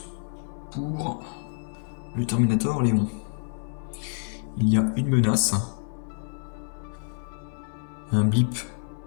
pour le Terminator Léon. Il y a une menace, un blip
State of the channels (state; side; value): silent; right; digital silence